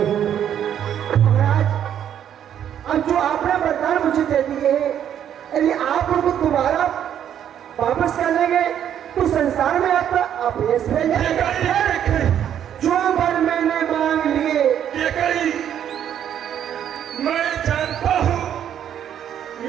हूँ। महाराज, अब जो आपने वरदान मुझे दे दिए यदि आप उनको दोबारा वापस कर लेंगे तो संसार में आपका अपयश मिल जाएगा। जो वर मैंने मांग लिए ये कही मैं जानता हूँ,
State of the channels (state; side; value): quieter; left; 9.7 dB